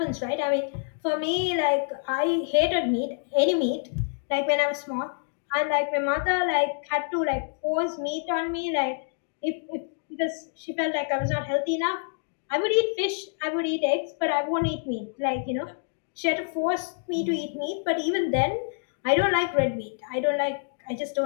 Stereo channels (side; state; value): right; silent; digital silence